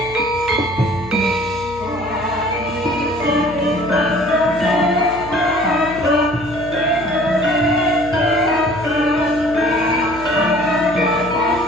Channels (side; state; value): left; noise; hum, 16 dB below the sound